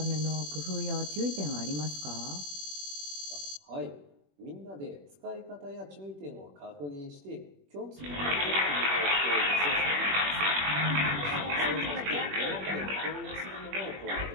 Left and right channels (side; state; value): left; late; 21 ms